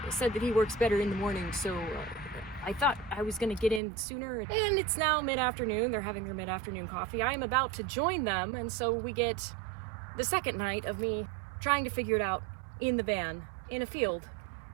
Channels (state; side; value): drops out; left; at 3.8 s